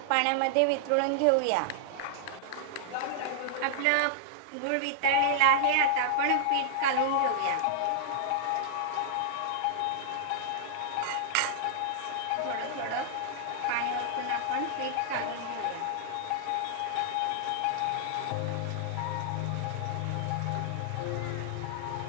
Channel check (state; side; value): different; both; correlation -0.01